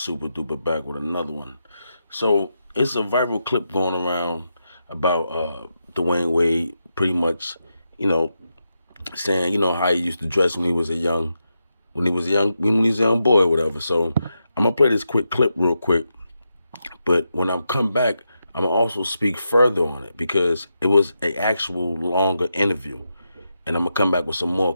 duper back with another one. So it's a viral clip going around about Dwyane Wade, pretty much, you know, saying how he used to dress when he was a young, when he was a young boy, or whatever. So I'm gonna play this quick clip real quick, but when I come back, I'm gonna also speak further on it because it was a actual longer interview, and I'm gonna come back with some more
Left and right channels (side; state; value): both; inverted; correlation -0.86